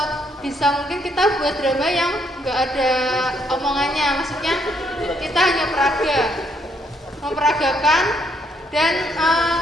bisa mungkin kita buat drama yang nggak ada omongannya, maksudnya kita hanya memperagakan dan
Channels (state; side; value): normal; both; correlation 0.72